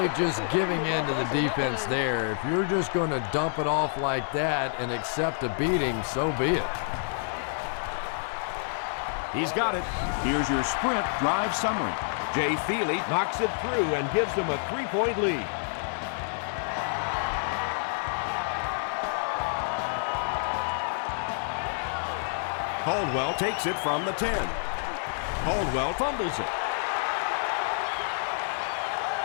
just giving in to the defense there. If you're just going to dump it off like that and accept a beating, so be it. He's got it. Here's your sprint drive summary. Jay Feely knocks it through and gives them a 3-point lead. Caldwell takes it from the 10. Caldwell fumbles it.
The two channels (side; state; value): right; silent; 57 dB below the other